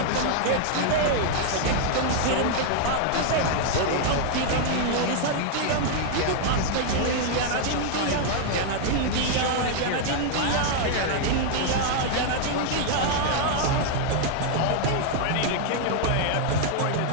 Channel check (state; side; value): different; both; correlation 0.00